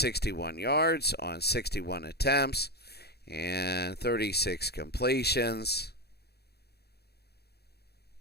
yards on 61 attempts and 36 completions.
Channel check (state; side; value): late; right; 0.47 ms